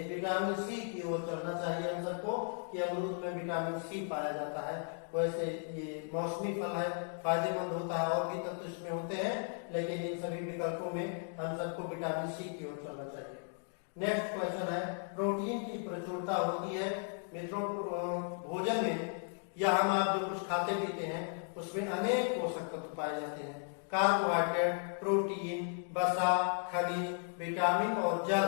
विटामिन सी की ओर चलना चाहिए हम सबको कि अमरूद में विटामिन सी पाया जाता है। वैसे ये मौसमी फल है, फायदेमंद होता है, और भी तत्व इसमें होते हैं, लेकिन इन सभी विकल्पों में हम सबको विटामिन सी की ओर चलना चाहिए। नेक्स्ट क्वेश्चन है प्रोटीन की प्रचुरता होती है मित्रों भोजन में, या हम आप जो कुछ खाते पीते हैं उसमें अनेक पोषक तत्व पाए जाते हैं। कार्बोहाइड्रेट, प्रोटीन, वसा, खनिज, विटामिन और जल।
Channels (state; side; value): silent; right; 54 dB below the other